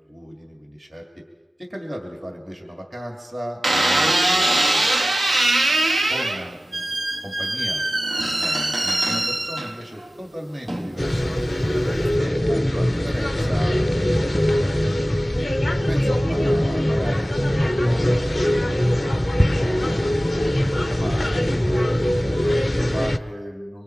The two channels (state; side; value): normal; both; correlation 0.97